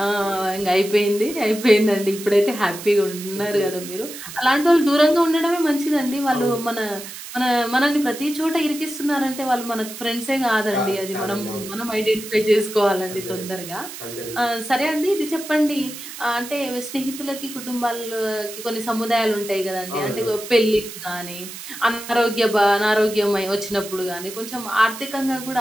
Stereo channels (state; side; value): noise; right; hiss, 12 dB below the sound